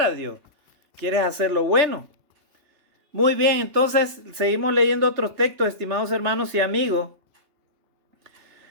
a Dios, quieres hacer lo bueno. Muy bien, entonces seguimos leyendo otros textos, estimados hermanos y amigos.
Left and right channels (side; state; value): left; late; 3.3 ms